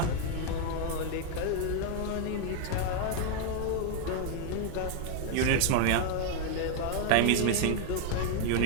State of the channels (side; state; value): both; different; correlation 0.01